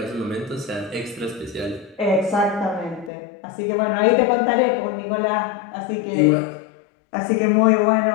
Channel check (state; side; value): drops out; right; at 3.1 s